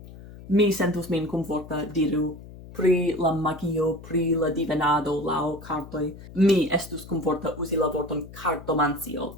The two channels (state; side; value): noise; left; hum, 16 dB below the sound